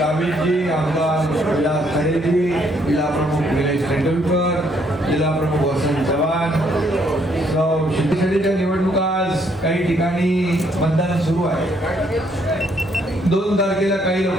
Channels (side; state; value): both; normal; correlation 0.69